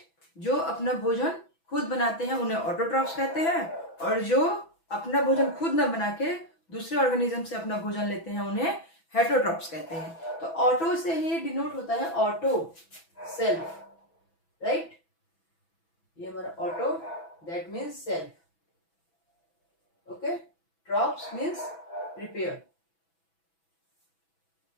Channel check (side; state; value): right; late; 6.0 ms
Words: जो अपना भोजन खुद बनाते हैं उन्हें ऑटोट्रॉफ्स कहते हैं, और जो अपना भोजन खुद न बना के दूसरे ऑर्गेनिज्म से अपना भोजन लेते हैं उन्हें हेटरोट्रॉफ्स कहते हैं। तो ऑटो से ही डिनोट होता है ऑटो, सेल्फ, राइट। ये हमारा auto, that means self, trophs means prepare.